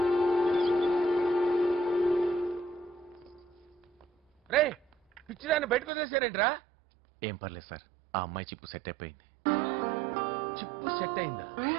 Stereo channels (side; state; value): left; drops out; at 5.9 s